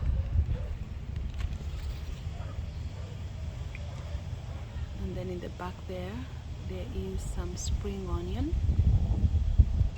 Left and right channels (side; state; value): both; identical; correlation 1.00